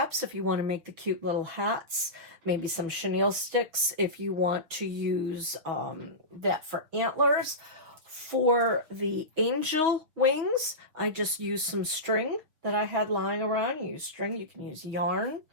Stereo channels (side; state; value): left; late; 6.3 ms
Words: if you want to make the cute little hats, maybe some chenille sticks if you want to use that for antlers. For the angel wings, I just used some string that I had lying around. You use string, you can use yarn.